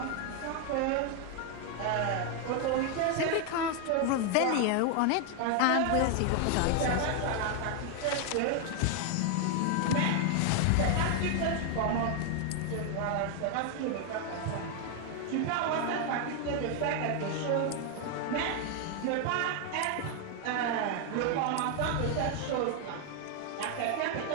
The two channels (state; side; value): different; both; correlation 0.00